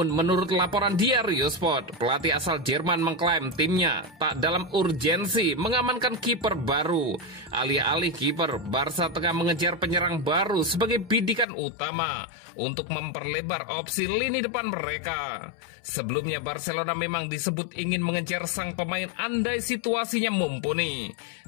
menurut laporan Diario Sport, pelatih asal Jerman mengklaim timnya tak dalam urgensi mengamankan kiper baru. Alih-alih kiper, Barca tengah mengejar penyerang baru sebagai bidikan utama untuk memperlebar opsi lini depan mereka. Sebelumnya Barcelona memang disebut ingin mengejar sang pemain andai situasinya mumpuni.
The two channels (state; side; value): drops out; right; at 11.5 s